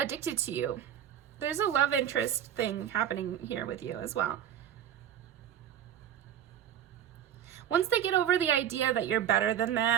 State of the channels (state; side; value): quieter; left; 10.2 dB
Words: to you. There's a love interest thing happening here with you as well. Once they get over the idea that you're better than